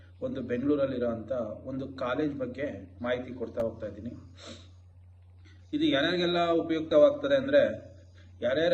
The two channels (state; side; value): identical; both; correlation 1.00